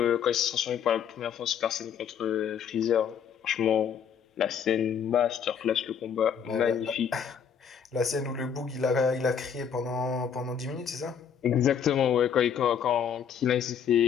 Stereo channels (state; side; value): quieter; right; 7.6 dB